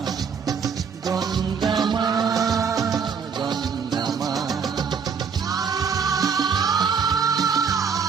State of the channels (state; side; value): quieter; left; 6.2 dB